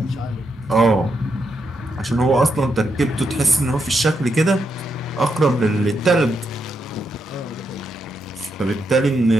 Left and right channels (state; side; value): normal; both; correlation 0.81